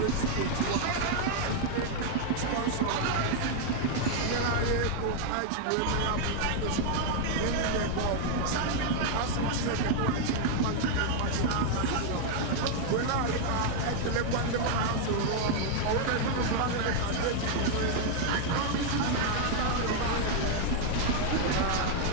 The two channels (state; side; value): different; both; correlation 0.00